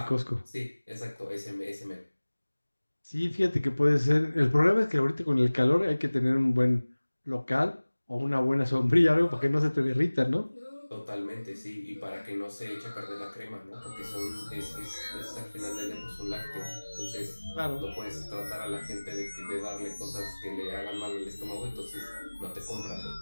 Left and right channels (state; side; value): inverted; both; correlation -1.00